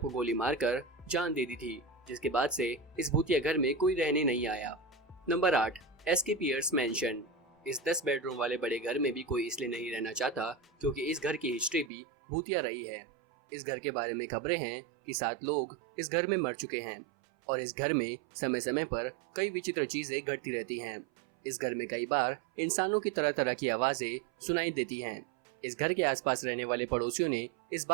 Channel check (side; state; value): left; drops out; at 11.9 s